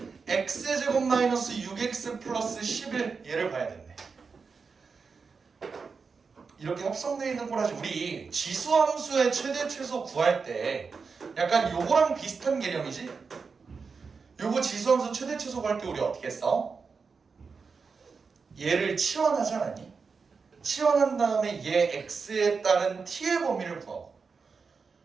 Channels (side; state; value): left; quieter; 5.1 dB